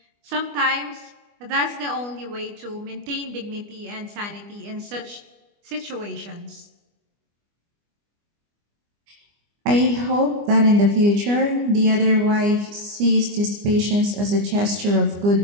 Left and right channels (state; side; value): late; left; 25 ms